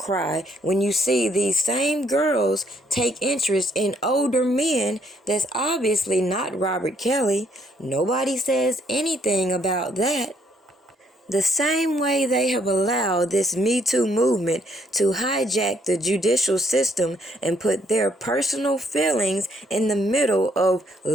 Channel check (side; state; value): both; normal; correlation 0.69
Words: when you see these same girls take interest in older men that's obviously not Robert Kelly? Nobody says anything about that. The same way they have allowed this Me Too movement to hijack the judicial system and put their personal feelings in the middle of